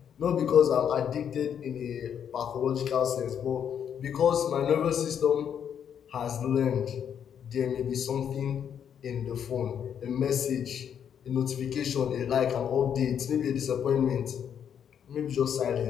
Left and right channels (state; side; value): quieter; right; 8.4 dB